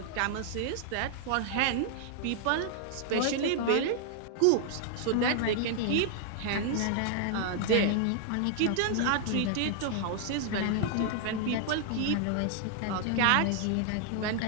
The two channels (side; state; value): both; different; correlation 0.00